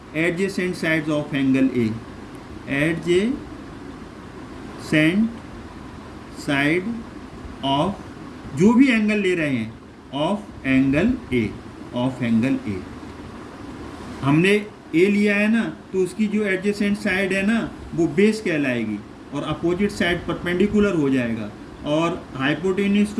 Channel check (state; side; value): identical; both; correlation 1.00